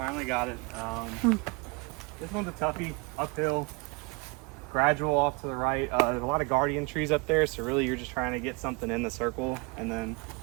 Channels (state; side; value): quieter; left; 29.1 dB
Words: got it. This one's a toughie, uphill, gradual off to the right. There's a lot of guardian trees up there, so really you're just trying to get something in the circle and then